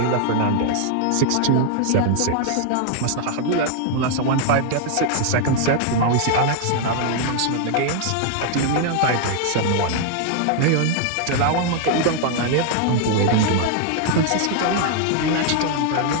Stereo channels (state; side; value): different; both; correlation 0.00